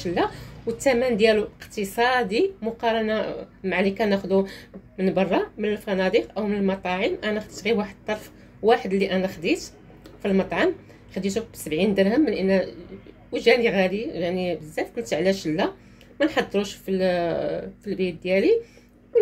لا؟ والثمن ديالو اقتصادي مقارنه مع اللي كناخذو من برا من الفنادق او من المطاعم. انا خديت غير واحد الطرف واحد اللي انا خديت في المطعم، خديته ب70 درهم، من ان وجاني غالي يعني بزاف. قلت علاش لا ما نحضروش في البيت ديالي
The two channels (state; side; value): identical; both; correlation 1.00